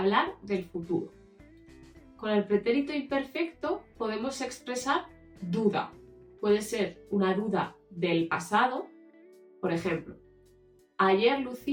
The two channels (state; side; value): identical; both; correlation 1.00